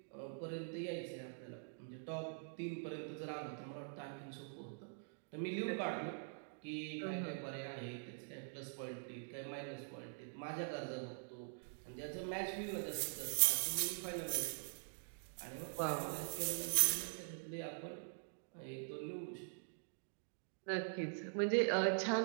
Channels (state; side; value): silent; left; digital silence